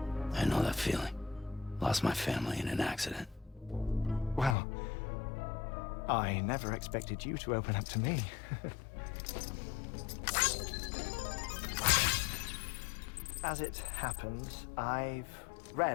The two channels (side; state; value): right; drops out; at 4.5 s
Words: I know that feeling. Lost my family in an accident. Well, I never expected you to open up to me. As it happens, I've